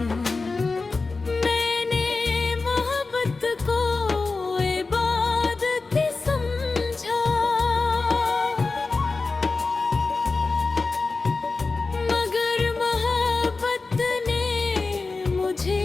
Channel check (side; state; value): right; quieter; 3.9 dB